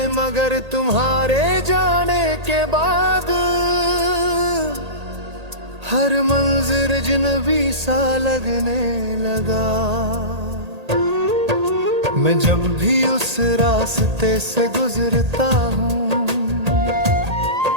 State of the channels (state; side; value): late; left; 1.8 ms